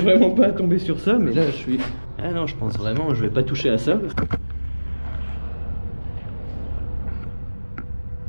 pas à tomber sur ça, mais là je suis... Ah non, je pense vraiment, je vais pas toucher à ça.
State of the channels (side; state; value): both; inverted; correlation -1.00